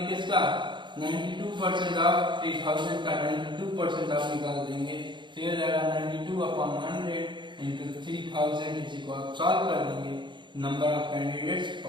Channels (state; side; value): late; left; 0.23 ms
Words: किसका, 92% ऑफ 3000 का 92% आप निकाल देंगे, तो ये जाएगा 92/100 इंटू 3000, इसी को आप सॉल्व कर देंगे, नंबर ऑफ कैंडिडेट्स